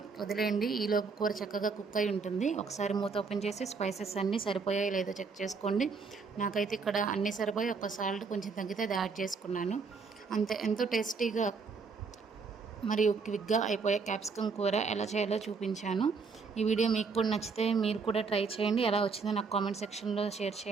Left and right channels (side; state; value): left; quieter; 4.9 dB